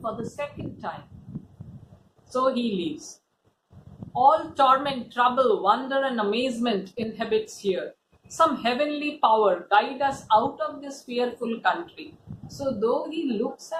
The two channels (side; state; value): both; identical; correlation 1.00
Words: for the second time. So he leaves. All torment, trouble, wonder and amazement inhabits here. Some heavenly power guide us out of this fearful country. So though he looks